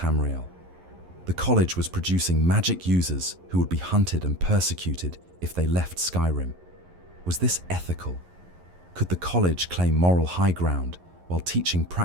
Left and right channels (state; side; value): late; left; 11 ms